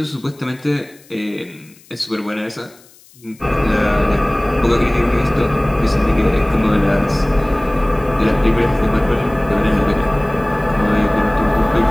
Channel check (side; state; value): left; noise; hiss, 27 dB below the sound